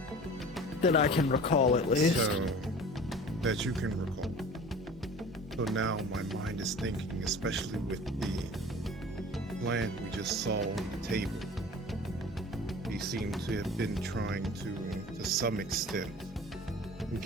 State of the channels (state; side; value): normal; both; correlation 0.41